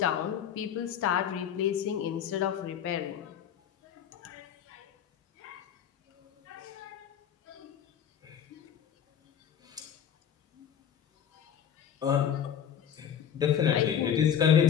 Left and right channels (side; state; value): right; quieter; 8.9 dB